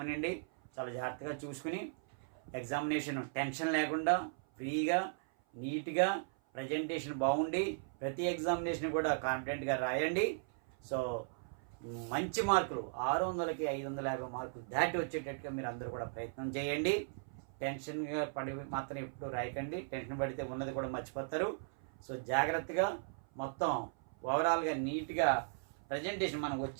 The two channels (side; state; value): left; silent; 53 dB below the other